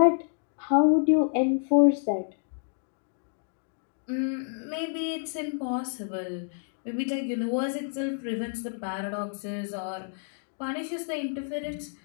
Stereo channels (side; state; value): right; silent; 57 dB below the other